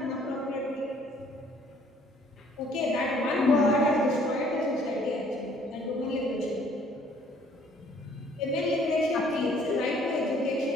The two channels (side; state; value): both; normal; correlation 0.60